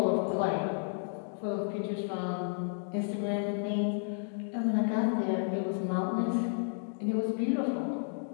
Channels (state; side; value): silent; right; digital silence